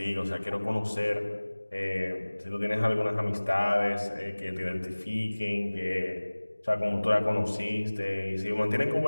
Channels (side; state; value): both; inverted; correlation -1.00